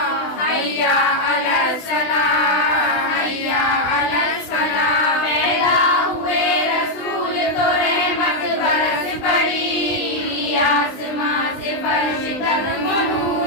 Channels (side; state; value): right; late; 20 ms